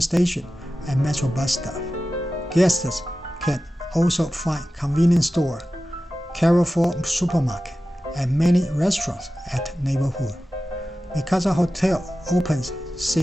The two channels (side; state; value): both; normal; correlation 0.94